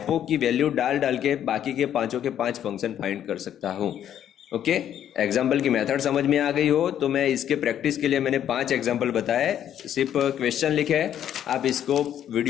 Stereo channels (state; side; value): quieter; right; 10.3 dB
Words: की वैल्यू डाल के बाकी के पांचों के 5 फंक्शन फाइंड कर सकता हूँ। ओके, एग्जाम्पल की मेथड समझ में आ गई हो तो मैं इसके प्रैक्टिस के लिए मैंने 5 एग्जाम्पल बताए, सिर्फ क्वेश्चन लिखे हैं। आप इसको